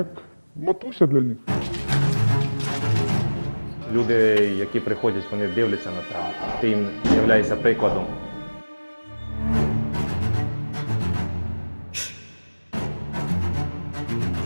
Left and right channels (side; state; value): both; inverted; correlation -1.00